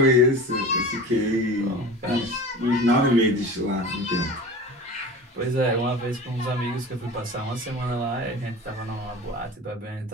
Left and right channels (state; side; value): normal; both; correlation 0.35